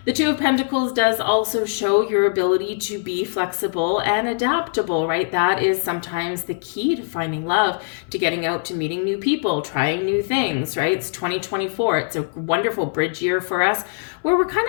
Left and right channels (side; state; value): right; silent; digital silence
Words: The Two of Pentacles does also show your ability to be flexible and adaptable, right? That is sometimes the key to finding love, to getting out, to meeting new people, trying new things, right? It's 2024. It's a wonderful bridge year for us, where we're kind